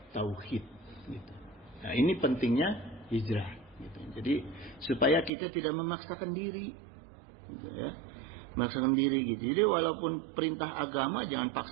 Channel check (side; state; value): left; drops out; at 5.3 s